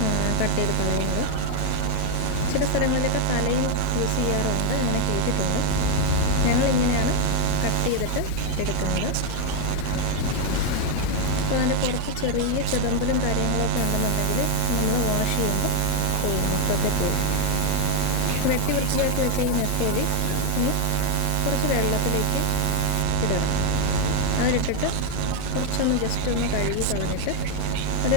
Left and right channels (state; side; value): different; both; correlation 0.01